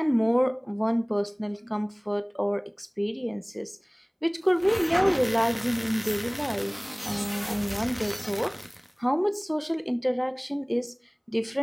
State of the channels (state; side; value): identical; both; correlation 1.00